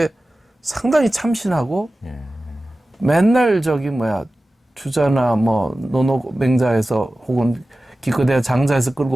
상당히 참신하고 맨날 주자나 뭐 노노맹자에서 혹은 기껏해야 장자에서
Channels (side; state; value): both; normal; correlation 0.96